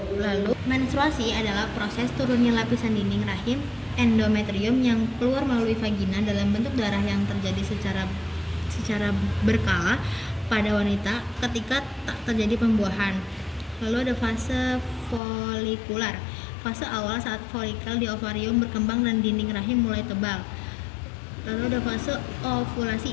Lalu menstruasi adalah proses turunnya lapisan dinding rahim endometrium yang keluar melalui vagina dalam bentuk darah yang terjadi secara berkala pada wanita ketika tak terjadi pembuahan. Lalu ada fase folikular, fase awal saat folikel di ovarium berkembang dan dinding rahim mulai tebal. Lalu ada fase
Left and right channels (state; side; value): drops out; right; at 15.2 s